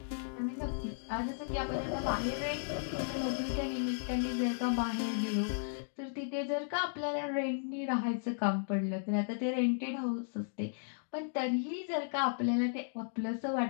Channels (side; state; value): right; silent; digital silence